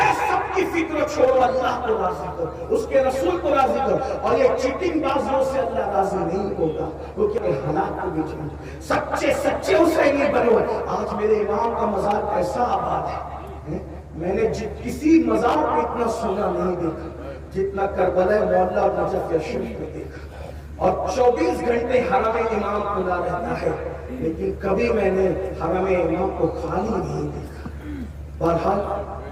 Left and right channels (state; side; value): identical; both; correlation 1.00